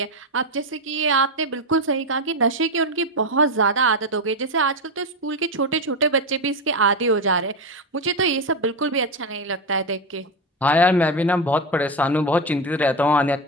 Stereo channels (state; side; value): normal; both; correlation 0.14